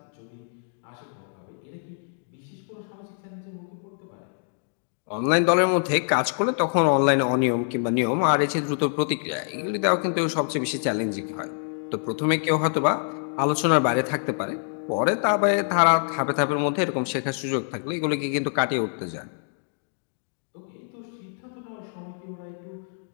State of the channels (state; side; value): silent; right; digital silence